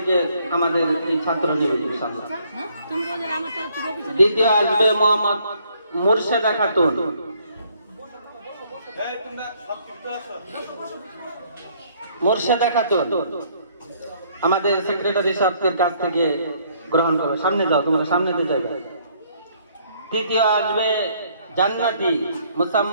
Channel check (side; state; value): both; inverted; correlation -0.65